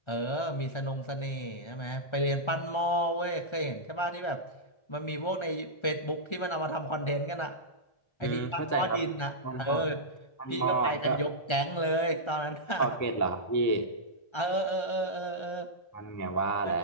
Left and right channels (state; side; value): late; right; 1.3 ms